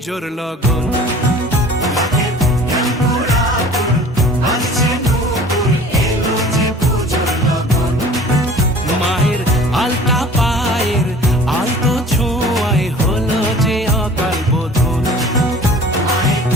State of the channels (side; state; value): both; normal; correlation 0.46